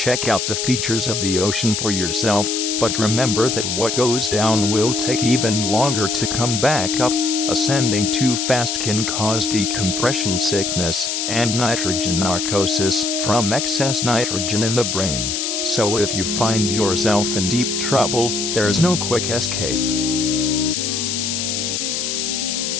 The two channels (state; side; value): noise; left; hiss, 1 dB below the sound